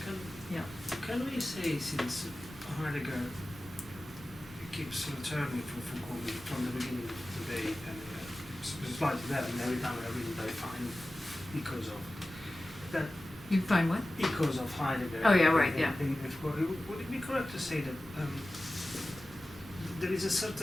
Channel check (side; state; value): both; normal; correlation 0.96